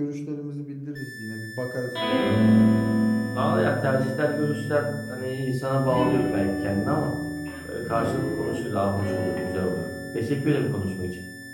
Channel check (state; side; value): identical; both; correlation 1.00